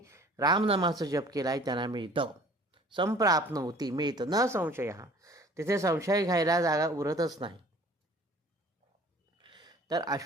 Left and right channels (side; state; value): both; normal; correlation 0.50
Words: रामनामाचा जप केला आहे त्यांना मिळतं. संप्राप्नोति मिळतं, न संशय. तिथे संशय घ्यायला जागा उरतच नाही. तर